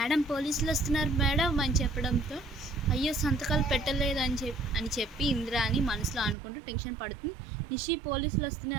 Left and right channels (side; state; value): left; drops out; at 6.4 s